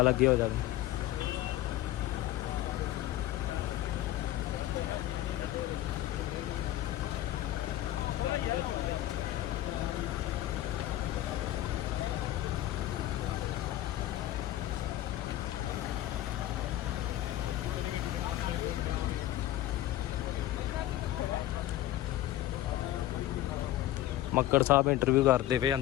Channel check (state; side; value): quieter; right; 14.3 dB